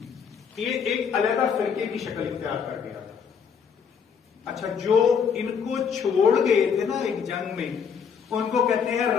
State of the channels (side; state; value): right; quieter; 6.8 dB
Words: یہ ایک علیحدہ فرقے کی شکل اختیار کر گیا تھا. اچھا, جو ان کو چھوڑ گئے تھے نا ایک جنگ میں, ان کو کہتے ہیں